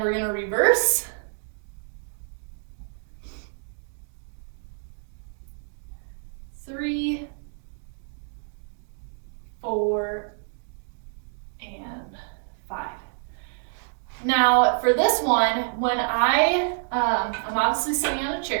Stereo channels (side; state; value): left; silent; digital silence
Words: we're going to reverse. Three, 4, and 5. Now for this one, when I'm obviously sitting on a